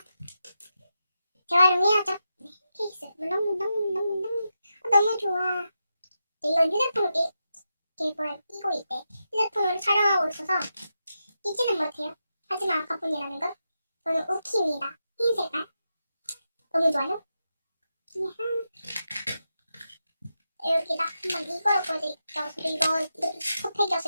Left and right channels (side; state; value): both; inverted; correlation -0.88